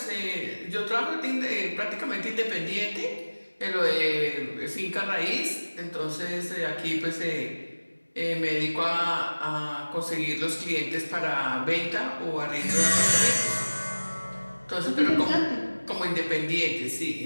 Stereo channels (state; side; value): inverted; both; correlation -1.00